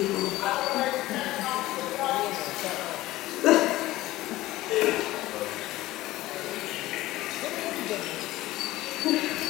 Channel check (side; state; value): right; quieter; 17.0 dB